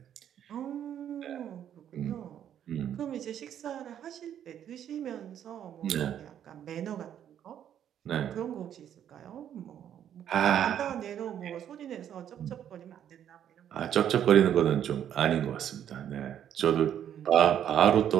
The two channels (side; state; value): left; quieter; 9.9 dB